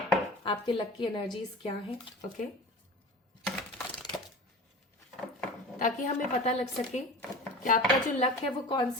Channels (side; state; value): both; normal; correlation 0.35